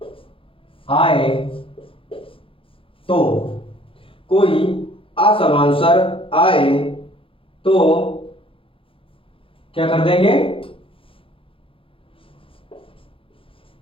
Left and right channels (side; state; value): right; late; 0.26 ms